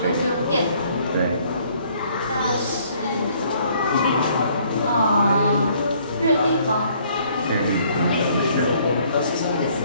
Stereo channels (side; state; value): both; inverted; correlation -0.62